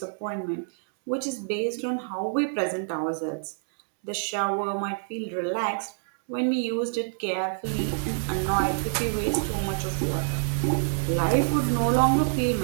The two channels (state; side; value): silent; left; 60 dB below the other